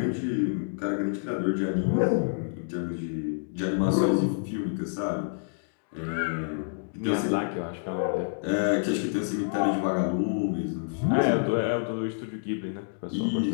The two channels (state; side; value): silent; right; digital silence